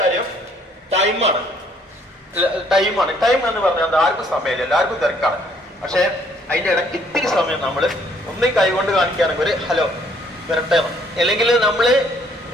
ടൈമാണ്. ടൈം എന്ന് പറഞ്ഞാൽ ആർക്കും സമയമില്ല, എല്ലാവർക്കും തിരക്കാണ്. പക്ഷെ അതിന്റെ ഇടയ്ക്ക് ഇത്തിരി സമയം നമ്മൾ ഒന്നും കൈകൊണ്ട് കാണിക്കുകയാണെങ്കിൽ ഒരു ഹലോ വരട്ടെ, അല്ലെങ്കിൽ നമ്മള്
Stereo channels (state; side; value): normal; both; correlation 0.64